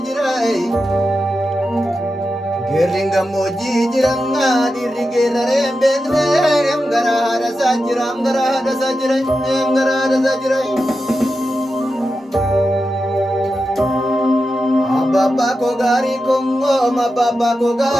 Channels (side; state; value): both; normal; correlation 0.90